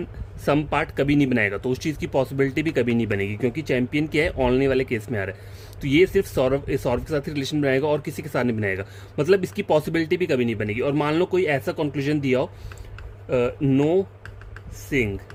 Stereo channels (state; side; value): identical; both; correlation 1.00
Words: सम पार्ट कभी नहीं बनाएगा, तो उस चीज़ की पॉसिबिलिटी भी कभी नहीं बनेगी, क्योंकि चैंपियन क्या है? ओनली वाले केस में आ रहा है। तो ये सिर्फ सौरव के साथ ही रिलेशन बनाएगा और किसी के साथ नहीं बनाएगा, मतलब इसकी पॉसिबिलिटी भी कभी नहीं बनेगी। और मान लो कोई ऐसा कंक्लूजन दिया हो,